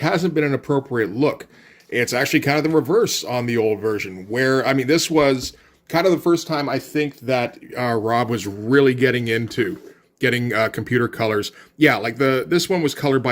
been an appropriate look. It's actually kind of the reverse on the old version, where, this was kind of the first time I think that Rob was really getting into getting computer colors. Yeah, this one was colored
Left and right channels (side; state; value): both; identical; correlation 1.00